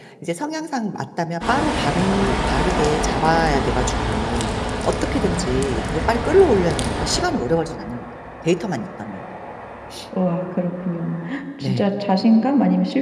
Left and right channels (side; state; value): both; identical; correlation 1.00